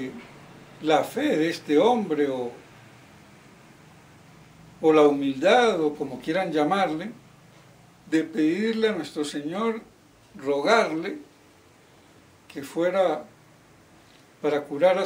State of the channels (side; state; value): both; identical; correlation 1.00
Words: la fe de este hombre, o la humildad, o como quieran llamarle, de pedirle a nuestro Señor, rogarle que fuera para curar a